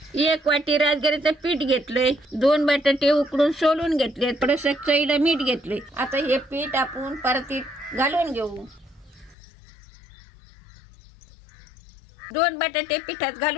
1 वाटी राजगिरीचं पीठ घेतलंय, 2 बटाटे उकडून सोलून घेतले, थोडंसं चवीला मीठ घेतले। आता हे पीठ आपण परतीत घालून घेऊ। 2 बटाटे पिठात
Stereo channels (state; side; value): drops out; right; at 9.3 s